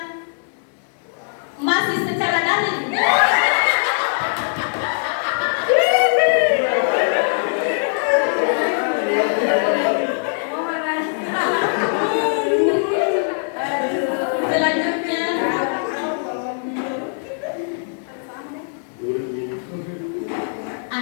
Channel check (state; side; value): silent; right; digital silence